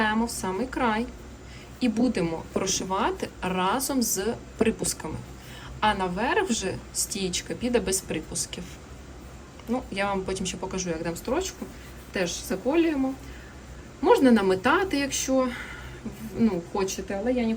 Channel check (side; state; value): both; identical; correlation 1.00